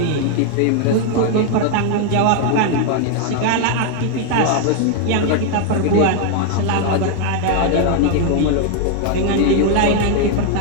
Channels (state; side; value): different; both; correlation 0.00